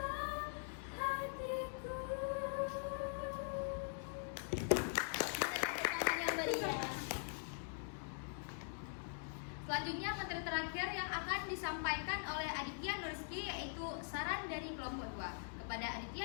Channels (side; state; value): right; silent; digital silence